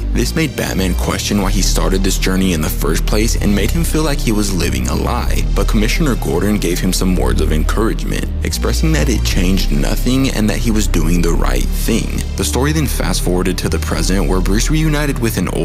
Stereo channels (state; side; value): identical; both; correlation 1.00